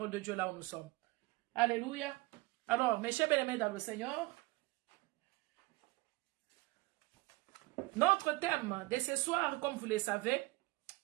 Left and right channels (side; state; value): left; quieter; 22.7 dB